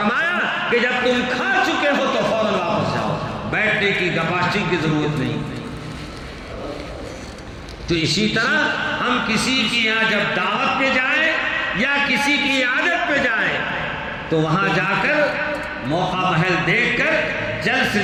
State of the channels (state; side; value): identical; both; correlation 1.00